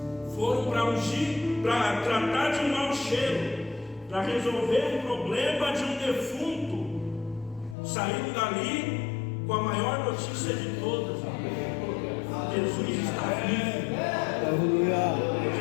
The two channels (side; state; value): right; drops out; at 7.8 s